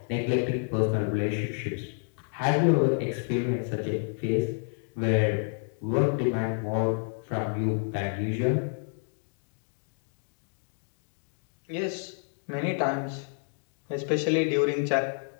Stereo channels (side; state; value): right; silent; 58 dB below the other